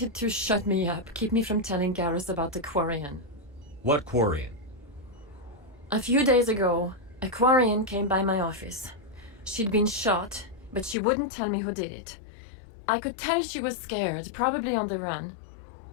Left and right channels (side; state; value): right; drops out; at 11.0 s